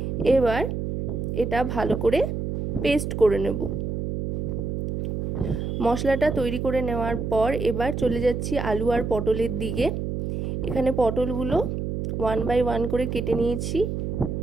এবার এটা ভালো করে পেস্ট করে নেব। মশলাটা তৈরি করে নেওয়ার পর এবার চলে যাচ্ছি আলু আর পটলের দিকে। এখানে পটলগুলো 1 বাই 1 করে কেটে নিয়েছি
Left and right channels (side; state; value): right; noise; hum, 3 dB below the sound